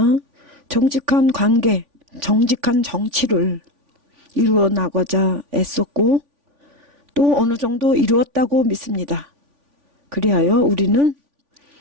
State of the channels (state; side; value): late; left; 3.5 ms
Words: 정직한 관계, 정직한 정치를 이루어 나가자 애썼고 또 어느 정도 이루었다고 믿습니다. 그리하여 우리는